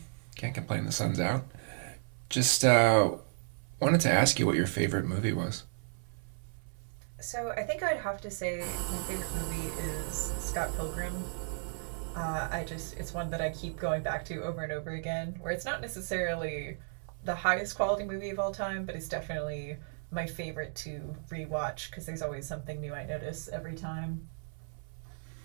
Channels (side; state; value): left; silent; 55 dB below the other